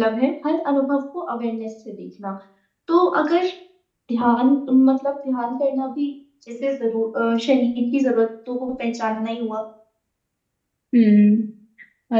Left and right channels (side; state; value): both; identical; correlation 1.00